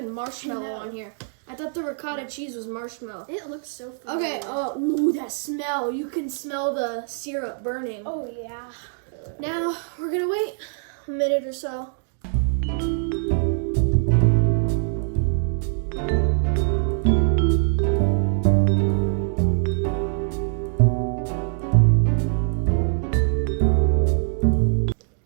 marshmallow on here. I thought the ricotta cheese was marshmallow. It looks so good. Okay, ooh, that smell. You can smell the syrup burning. Oh yeah. Now, we're gonna wait a minute or so.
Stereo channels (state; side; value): silent; left; digital silence